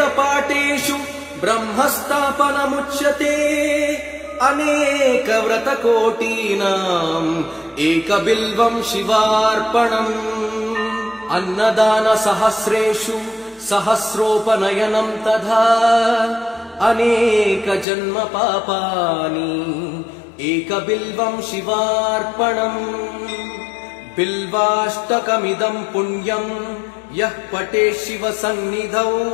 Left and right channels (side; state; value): right; drops out; at 17.9 s